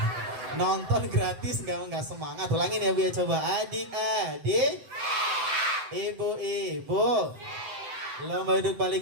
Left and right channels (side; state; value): left; late; 7.8 ms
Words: Nonton gratis nggak semangat, ulangin ya Bu ya, coba. Adik-adik, ibu-ibu, lomba duduk